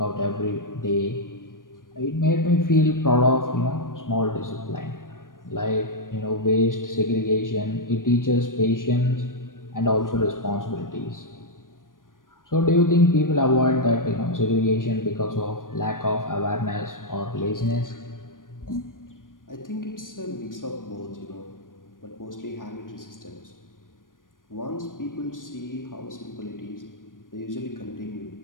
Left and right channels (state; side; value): late; right; 0.90 ms